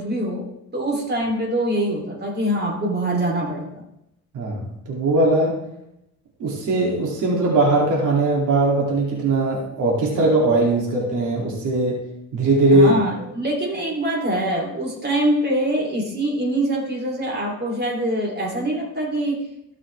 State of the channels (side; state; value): both; normal; correlation 0.14